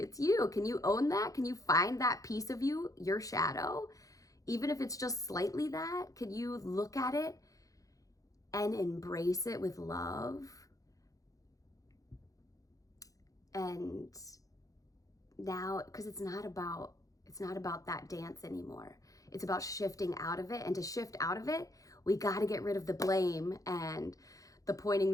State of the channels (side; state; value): right; late; 0.17 ms